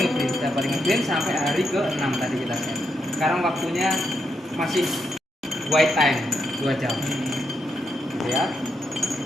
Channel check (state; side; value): normal; both; correlation 0.81